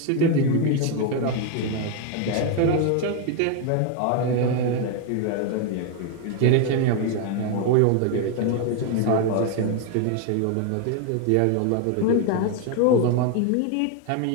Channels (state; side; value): different; both; correlation 0.01